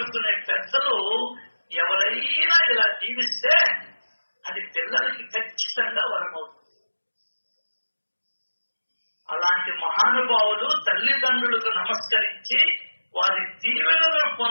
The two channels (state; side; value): inverted; both; correlation -1.00